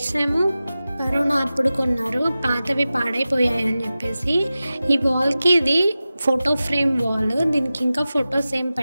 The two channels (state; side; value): inverted; both; correlation -0.95